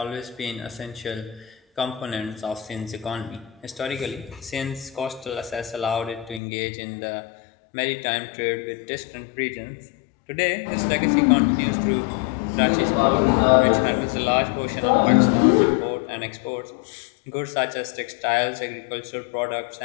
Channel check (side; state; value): right; drops out; at 6.4 s